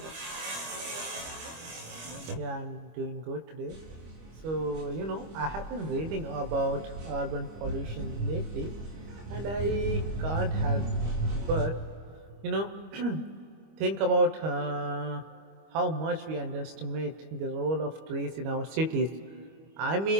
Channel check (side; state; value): left; late; 25 ms